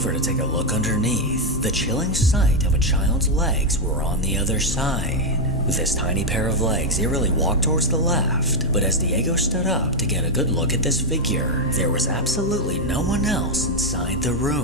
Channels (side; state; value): both; normal; correlation 0.02